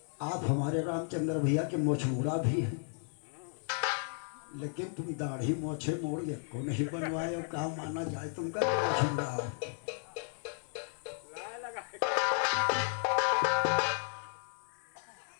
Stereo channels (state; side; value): silent; right; 55 dB below the other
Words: आप हमारे रामचंद्र भैया के मोछमुड़ा भी हैं, लेकिन तुम दाढ़ी मोछे मोड़ को नहीं बनवाए हो, कहा माना जाए तुमका मोछमुड़ा हो।